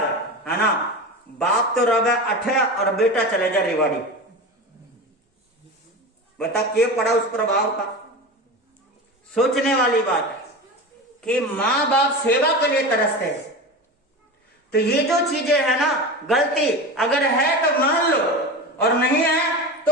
है ना, बाप तो रवे अठे और बेटा चले जा रेवाड़ी। बता क्या पड़ा उस प्रभाव का। सोचने वाली बात है कि माँ बाप सेवा के लिए तरसते हैं। तो ये जो चीजें है ना, गलती अगर है तो मान लो, और नहीं है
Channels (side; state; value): both; normal; correlation 0.27